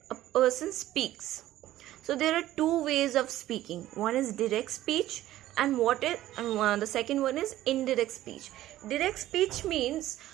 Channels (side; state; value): left; quieter; 14.3 dB